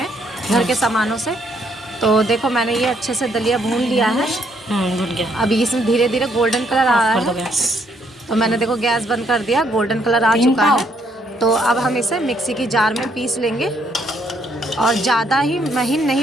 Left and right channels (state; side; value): normal; both; correlation 0.71